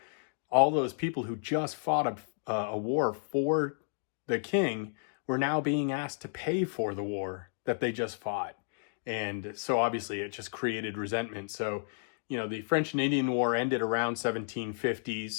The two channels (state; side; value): silent; right; digital silence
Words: All those people who just fought a war for the king were now being asked to pay for the war that they just fought. And so obviously it just created resentment. So, you know, the French and Indian War ended around